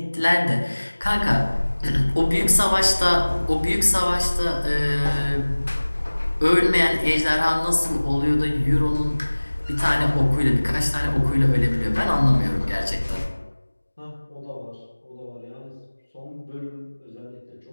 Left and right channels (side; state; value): both; inverted; correlation -1.00